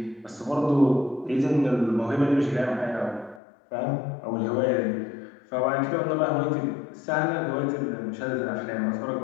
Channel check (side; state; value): right; drops out; at 3.4 s